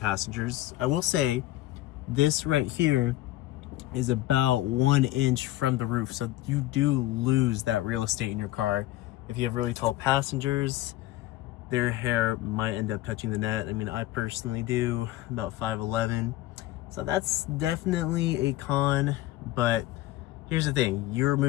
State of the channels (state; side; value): quieter; right; 16.2 dB